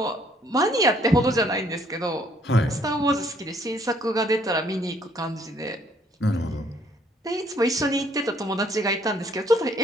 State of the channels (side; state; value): both; normal; correlation 0.64